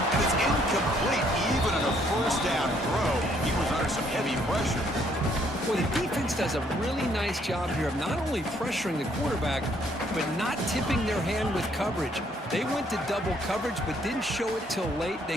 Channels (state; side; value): normal; both; correlation 0.67